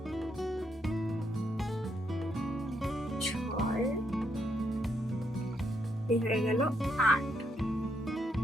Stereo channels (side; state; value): both; normal; correlation 0.77